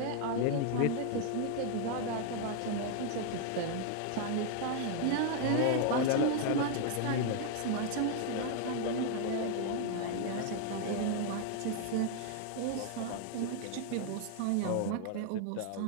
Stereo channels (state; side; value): different; both; correlation 0.00